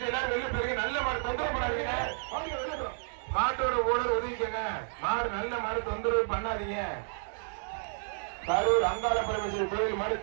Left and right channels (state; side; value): silent; left; 57 dB below the other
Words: எல்லாரும் வெளில போயிருக்க, நல்ல மாடு தொந்தரவு பண்ணாதீங்க. மாட்டோட ஓனர் ஒதுக்கிக்கங்க. மாடு நல்ல மாடு தொந்தரவு பண்ணாதீங்க. கரூர் அங்காள பரமேஸ்வரி கோயில் மாடு